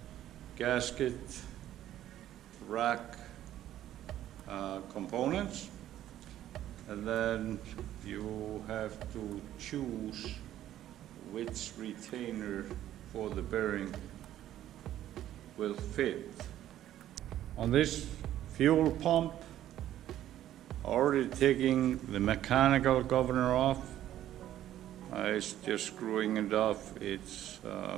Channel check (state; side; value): quieter; left; 12.4 dB